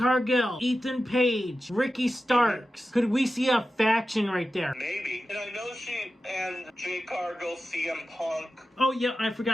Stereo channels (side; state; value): both; normal; correlation 0.93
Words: Ethan Page, Ricky Starks. Could we see a faction right there? Maybe. And I know she and Jade Cargill, CM Punk. Oh yeah, I